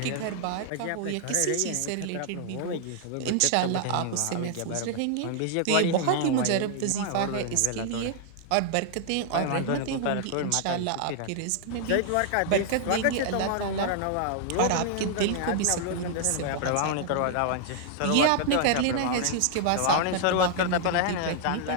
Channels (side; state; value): both; different; correlation -0.01